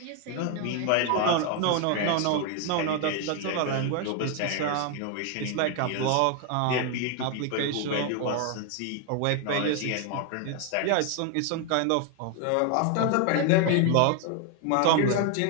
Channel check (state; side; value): different; both; correlation 0.01